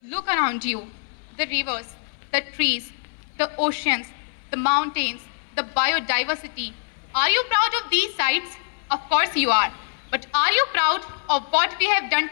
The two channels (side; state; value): right; silent; 63 dB below the other